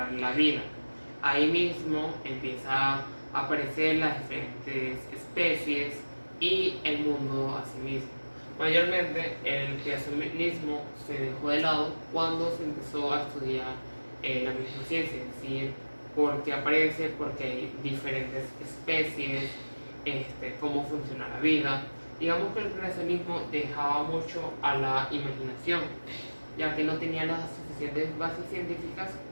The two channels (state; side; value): inverted; both; correlation -1.00